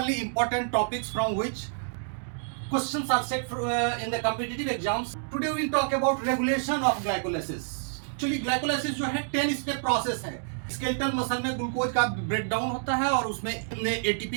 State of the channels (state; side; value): silent; left; digital silence